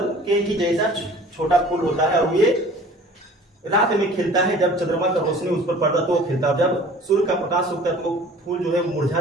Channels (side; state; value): both; normal; correlation 0.47